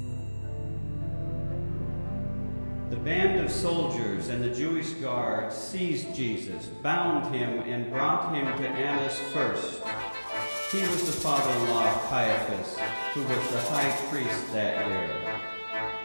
The band of soldiers and the Jewish guards seized Jesus, bound him, and brought him to Annas first. He was the father-in-law of Caiaphas, who was the high priest that year.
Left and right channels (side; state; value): both; inverted; correlation -1.00